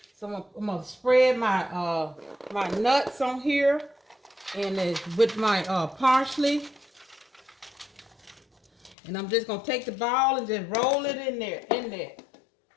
so I'm gonna spread my my nuts on here, and with my parsley, and I'm just gonna take the ball and just roll it in there.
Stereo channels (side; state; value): right; drops out; at 9.0 s